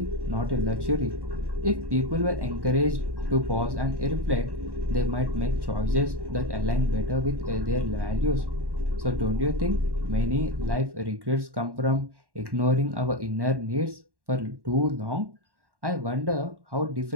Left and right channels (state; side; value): late; left; 1.1 ms